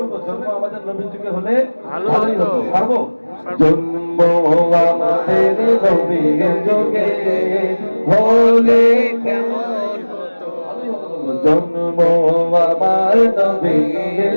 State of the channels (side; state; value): both; inverted; correlation -1.00